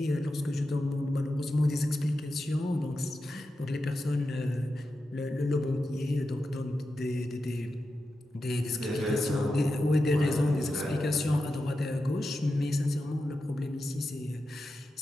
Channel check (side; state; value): both; normal; correlation 0.90